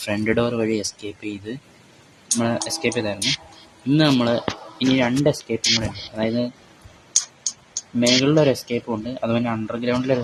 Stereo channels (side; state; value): both; identical; correlation 1.00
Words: ഫ്രണ്ട് ഡോർ വഴി എസ്കേപ്പ് ചെയ്തായിരുന്നു. ഇന്ന് നമ്മൾ ഇനി രണ്ട് എസ്കേപ്പും കൂടെ ഉണ്ട്, അതായത് മേളിലൊരു എസ്കേപ്പും ഉണ്ട്, അതുപോലെ അണ്ടർഗ്രൗണ്ടിലൊരു